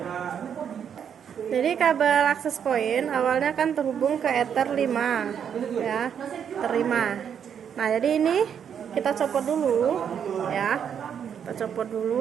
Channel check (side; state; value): left; quieter; 8.1 dB